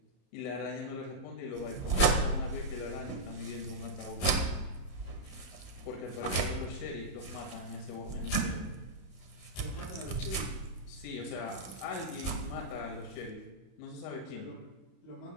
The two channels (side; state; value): right; late; 32 ms